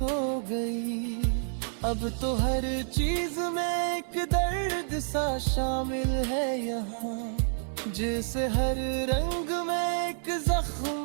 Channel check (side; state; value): left; silent; 57 dB below the other